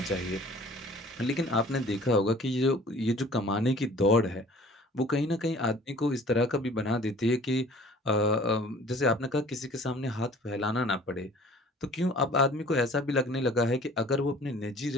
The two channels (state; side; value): normal; both; correlation 0.50